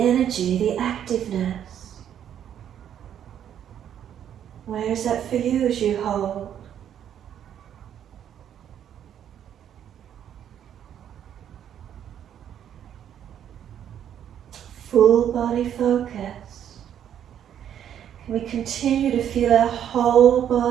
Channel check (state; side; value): quieter; left; 9.7 dB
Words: the activeness. Where is that for you as you hold? Full body focus. Can we continue to feel our whole